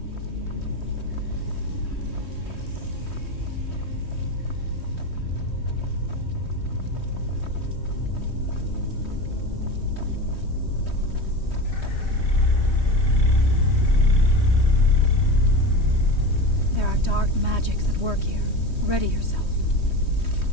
dark magics at work here. Ready yourself.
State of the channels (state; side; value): late; right; 3.2 ms